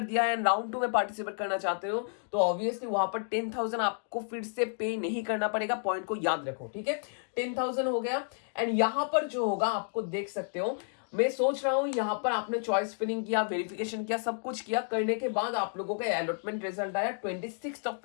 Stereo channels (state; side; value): silent; right; digital silence